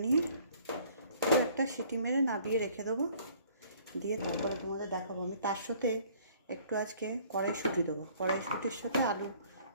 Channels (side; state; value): both; inverted; correlation -0.57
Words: নিয়ে একটা সিটি মেরে নাবিয়ে রেখে দেবো। দিয়ে তারপরে তোমাদের দেখাবো। আমি তার সাথে একটু আজকে কড়াইশুঁটি দেবো। কড়াইশুঁটির সাথে আলু